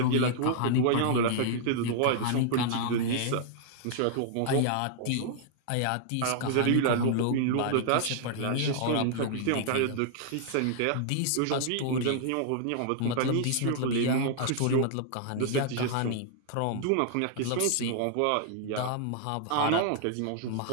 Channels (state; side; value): different; both; correlation -0.01